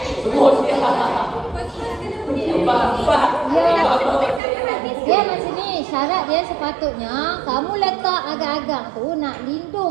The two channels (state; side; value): drops out; left; at 4.4 s